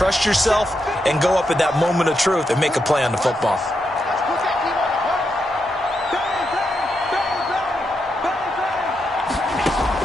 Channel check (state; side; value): normal; both; correlation 0.83